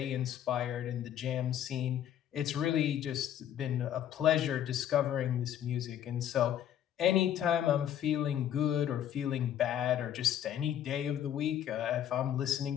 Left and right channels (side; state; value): right; quieter; 10.5 dB